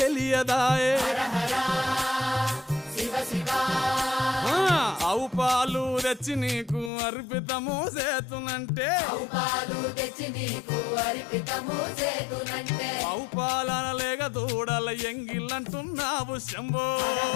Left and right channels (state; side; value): drops out; right; at 6.9 s